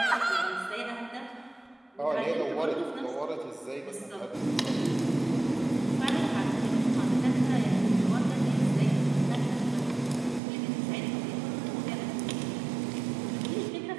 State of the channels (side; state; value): left; drops out; at 10.4 s